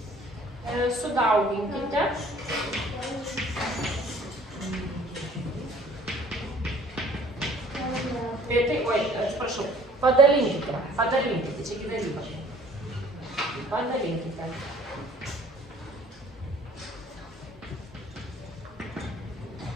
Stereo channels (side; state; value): both; normal; correlation 0.54